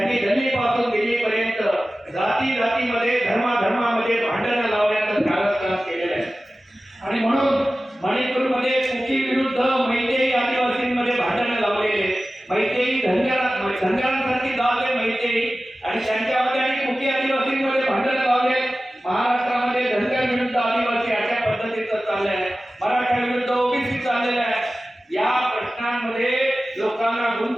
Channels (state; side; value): normal; both; correlation 0.96